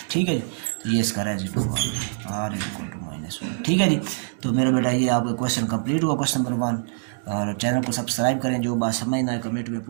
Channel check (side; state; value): left; silent; digital silence